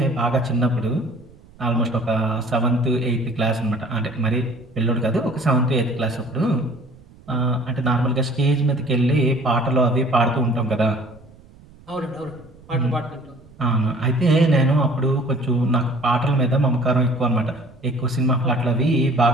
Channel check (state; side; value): noise; right; rumble, 24 dB below the sound